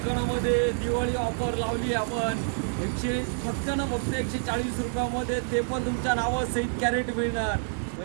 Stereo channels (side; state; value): left; silent; digital silence